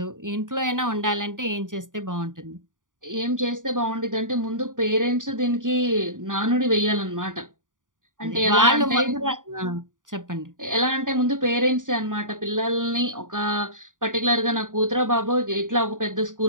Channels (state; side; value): late; left; 0.88 ms